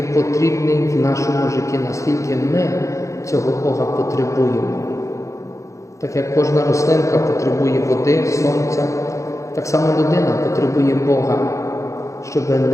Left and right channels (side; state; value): right; late; 0.15 ms